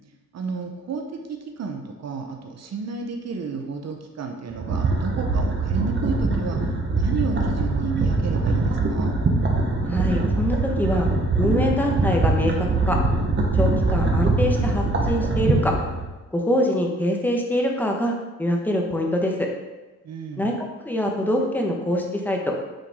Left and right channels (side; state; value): both; normal; correlation 0.63